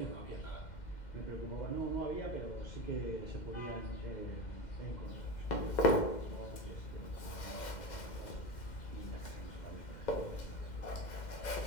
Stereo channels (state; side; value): late; right; 2.1 ms